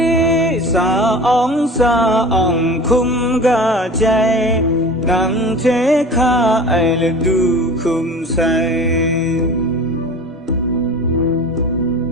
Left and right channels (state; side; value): normal; both; correlation 0.38